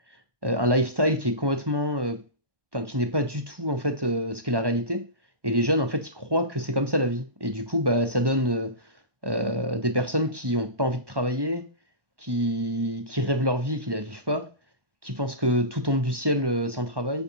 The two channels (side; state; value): left; late; 1.1 ms